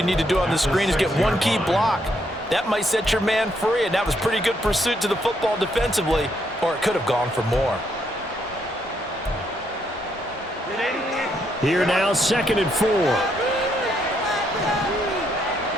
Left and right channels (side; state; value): both; normal; correlation 0.75